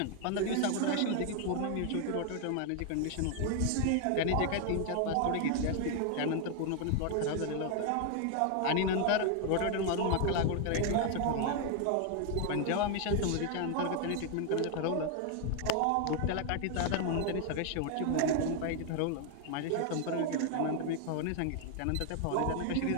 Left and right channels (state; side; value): different; both; correlation 0.00